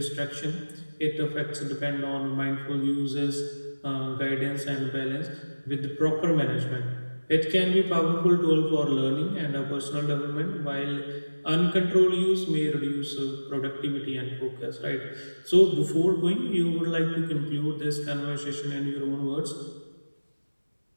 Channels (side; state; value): both; inverted; correlation -1.00